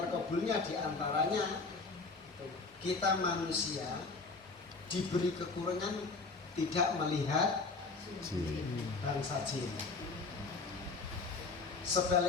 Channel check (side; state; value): right; quieter; 4.0 dB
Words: diantaranya kita manusia diberi kekurangan tidak melihat bangsa jin.